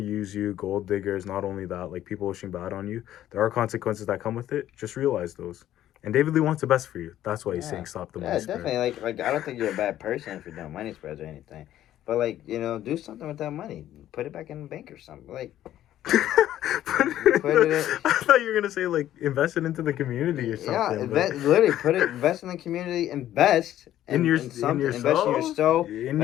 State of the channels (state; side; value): quieter; right; 12.5 dB